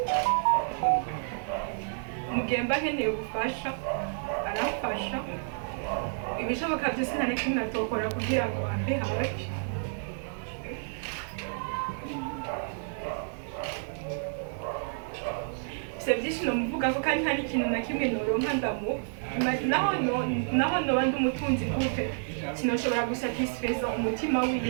mugemba nkeneye ubufasha aramfasha ibishoboka byose nta na kimwe atokora kugira ngo ambe hafi byinshi nomuvuga ko kandi nta n'ikintu na kimwe noronka naho noba ndi umutunzi gute sinoshobora gusatisfeza umutima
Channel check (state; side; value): silent; left; digital silence